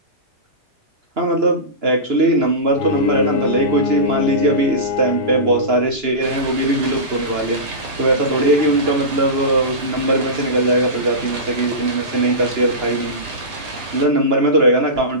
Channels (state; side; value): late; left; 2.9 ms